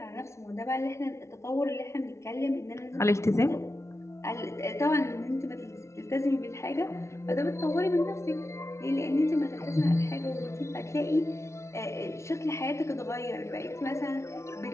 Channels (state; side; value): late; right; 0.13 ms